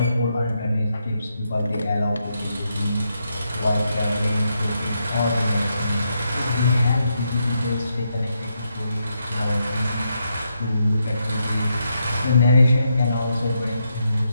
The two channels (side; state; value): both; inverted; correlation -0.81